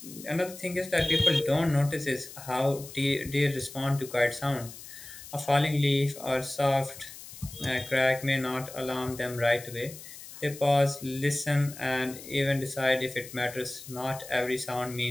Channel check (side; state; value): left; noise; hiss, 15 dB below the sound